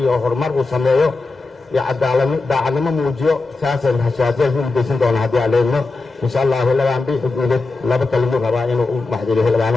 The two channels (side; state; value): right; quieter; 3.6 dB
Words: horumar uu sameeyo iyo daacadnimo muujiyo saasaan hashaadiyad ku mudaysan doona haddii aan leedno insha allah xildhibaan biixi guuded laba kalimuu rabaa inuu u maxdiliyo